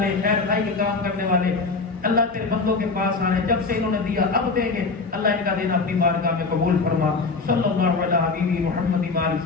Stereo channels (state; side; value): quieter; right; 4.1 dB